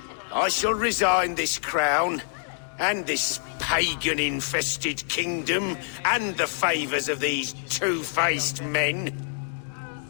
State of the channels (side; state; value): right; silent; 61 dB below the other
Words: I shall resign this crown, and this pagan-infested kingdom, and the favours of these two-faced men.